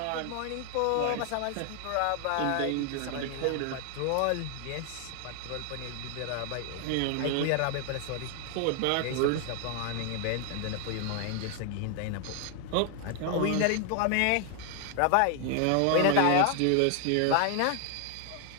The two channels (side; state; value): both; different; correlation 0.00